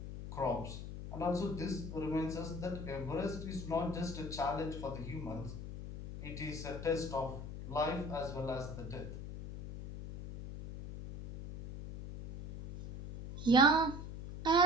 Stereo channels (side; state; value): left; noise; hum, 8 dB below the sound